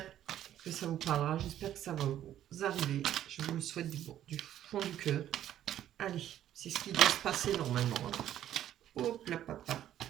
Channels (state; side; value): quieter; left; 11.6 dB